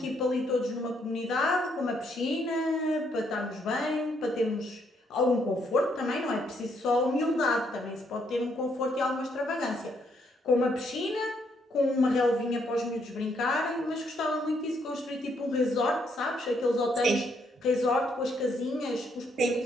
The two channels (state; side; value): normal; both; correlation 0.73